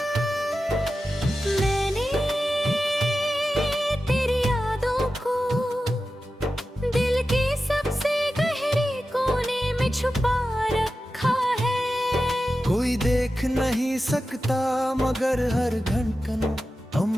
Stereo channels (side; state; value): both; normal; correlation 0.93